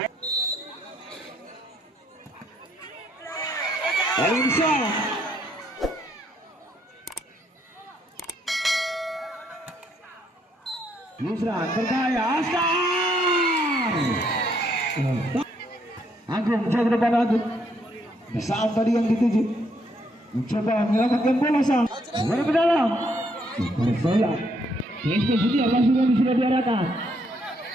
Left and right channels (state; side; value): normal; both; correlation 0.72